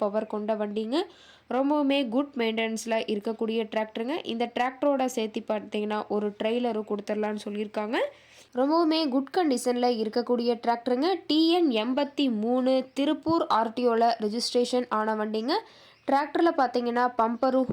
பவர் கொண்ட வண்டிங்க. ரொம்பவுமே குட் மெயின்டெனன்ஸில் இருக்கக்கூடிய டிராக்டருங்க. இந்த டிராக்டரோட சேர்த்து பார்த்தீங்கன்னா ஒரு ட்ரெய்லரும் கொடுத்துடலான்னு சொல்லியிருக்காங்க. ரொம்பவுமே குட் கண்டிஷனில் இருக்கக்கூடிய டிராக்டருங்க. டிஎன் 83 திருப்பூர் ஆர்டிஓவில் ரெஜிஸ்ட்ரேஷன் ஆன வண்டிங்க. டிராக்டரில் பார்த்தீங்கன்னா பம்பரும்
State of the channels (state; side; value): identical; both; correlation 1.00